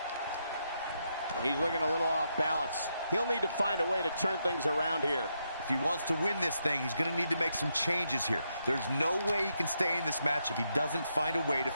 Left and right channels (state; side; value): inverted; both; correlation -0.81